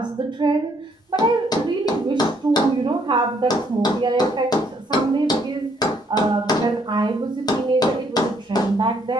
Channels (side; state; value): both; normal; correlation 0.68